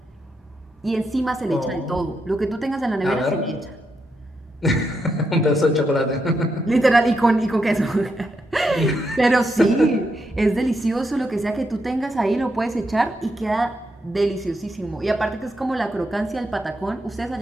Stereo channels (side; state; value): both; normal; correlation 0.82